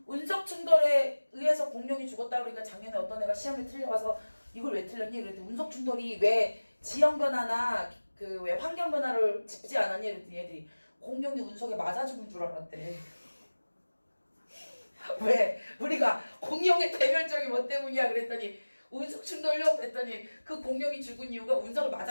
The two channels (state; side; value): inverted; both; correlation -1.00